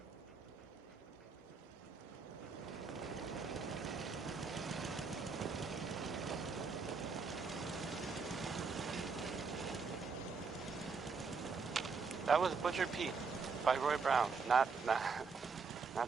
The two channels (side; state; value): left; quieter; 5.0 dB